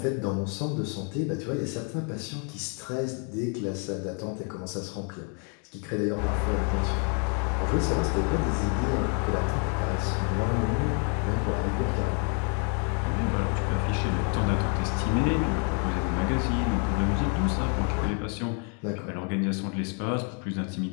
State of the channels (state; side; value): quieter; right; 39.7 dB